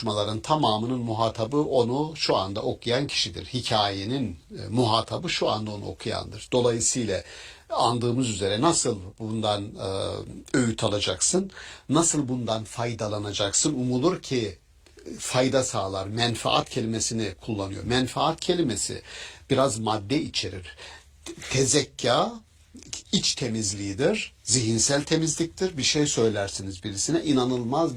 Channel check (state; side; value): identical; both; correlation 1.00